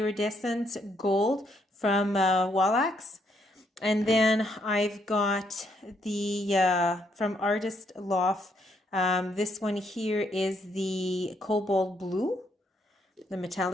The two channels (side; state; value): both; normal; correlation 0.73